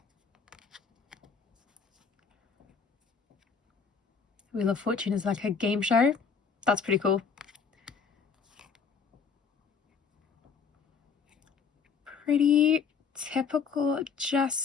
Wheel of Fortune is like a game show. That's pretty cool. Pretty typical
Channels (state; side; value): quieter; right; 5.8 dB